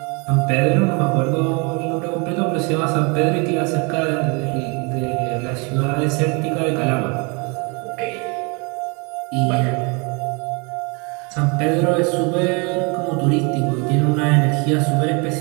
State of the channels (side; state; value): left; quieter; 31.4 dB